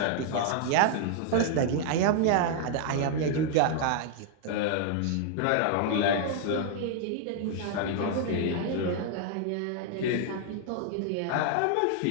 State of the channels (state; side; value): different; both; correlation 0.00